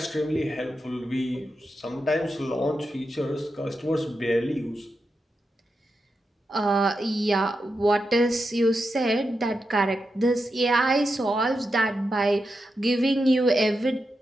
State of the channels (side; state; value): both; normal; correlation 0.87